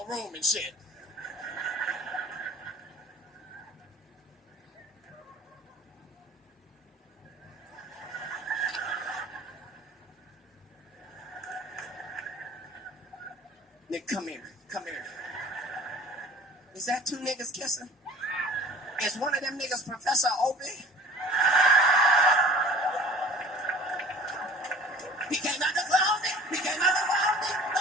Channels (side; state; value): both; normal; correlation 0.46